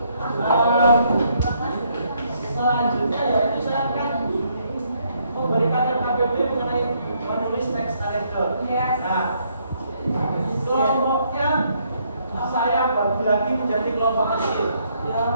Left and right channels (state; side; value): inverted; both; correlation -0.71